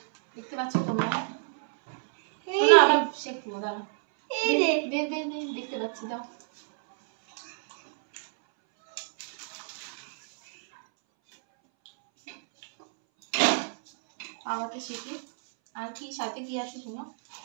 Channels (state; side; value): silent; left; 59 dB below the other